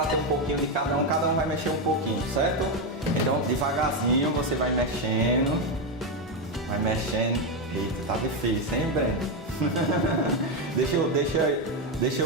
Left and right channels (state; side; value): normal; both; correlation 0.07